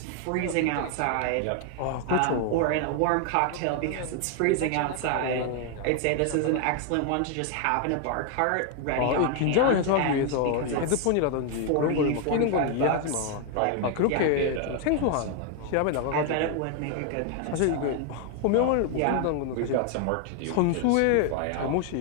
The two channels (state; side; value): different; both; correlation 0.00